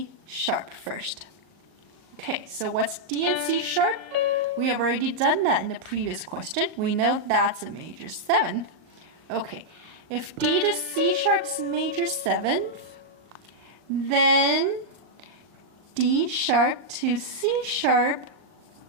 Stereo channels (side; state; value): left; late; 39 ms